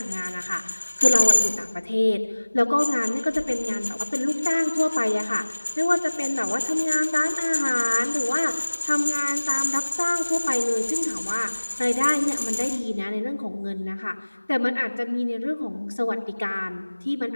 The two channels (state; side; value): inverted; both; correlation -1.00